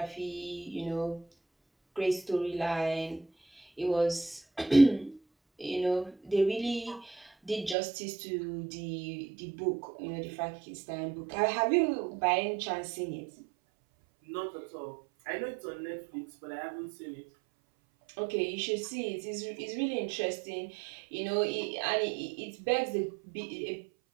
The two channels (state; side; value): drops out; left; at 7.8 s